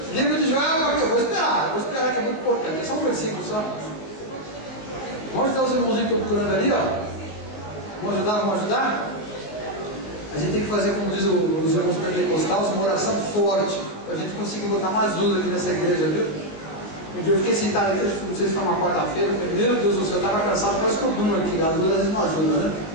Livro de Joel, eu vou esperar que é muito importante. É só um versículo só. Vamos ajudar os irmãozinhos que estão procurando ali, ó. Vamos ajudar? A gente tem que fazer, como diz os irmãos pentecostais, uma oração forte, para a gente conseguir botar mais luz aqui nessa igreja, viu? Um dia eu fiquei sentado aqui, não sei se foi uma quarta-feira, eu falei, meu Deus do céu, eu estava cansado, quase que eu durmo aqui, a luz às vezes não ajuda, né?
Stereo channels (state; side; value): late; right; 19 ms